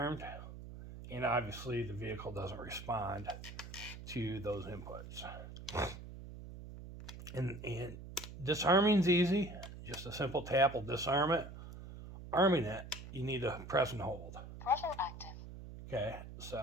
And obviously the vehicle doesn't respond to those inputs. And disarming's easy. Just a simple tap will disarm it. Arming it, you need to press and hold. Throttle active. Okay,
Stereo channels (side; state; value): right; noise; hum, 12 dB below the sound